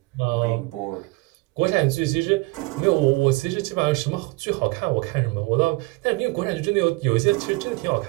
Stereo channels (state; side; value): quieter; left; 25.1 dB